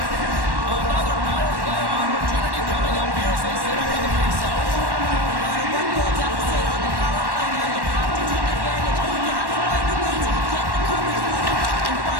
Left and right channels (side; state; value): left; late; 1.1 ms